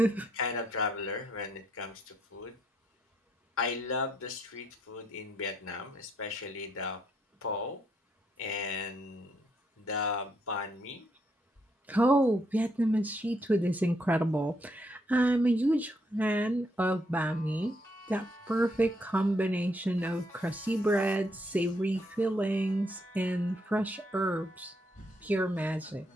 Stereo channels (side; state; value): both; normal; correlation 0.75